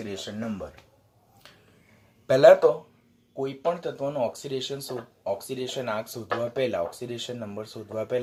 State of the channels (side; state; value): both; identical; correlation 1.00